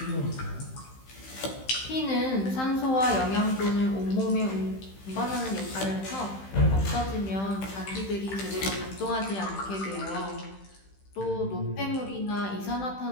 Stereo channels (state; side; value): late; right; 15 ms